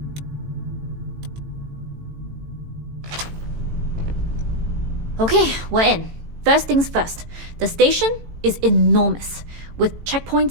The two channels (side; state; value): left; late; 18 ms